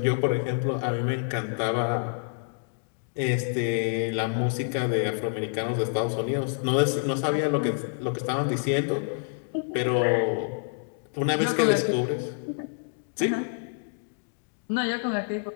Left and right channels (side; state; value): right; silent; digital silence